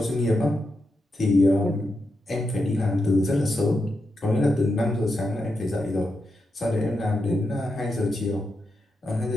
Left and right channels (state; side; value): normal; both; correlation 0.86